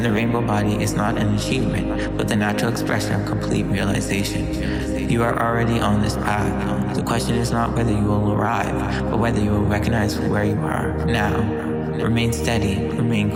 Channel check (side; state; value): both; identical; correlation 1.00